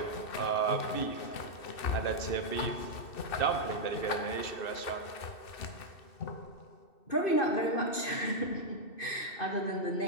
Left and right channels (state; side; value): late; right; 2.6 ms